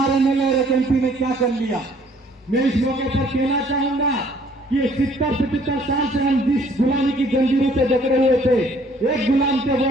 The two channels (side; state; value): both; normal; correlation 0.60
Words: एमएलए और एक एमपी ने क्या कर लिया। मैं इस मौके पर कहना चाहूंगा कि 70-75 साल से हम जिस गुलामी की जंजीरों से जकड़े हुए थे, एक गुलाम से